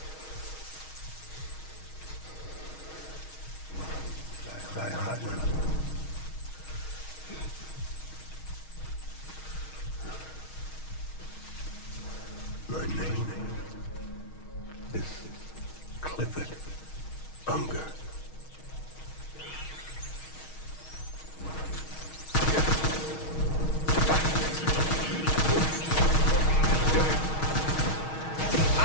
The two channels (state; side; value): late; right; 6.4 ms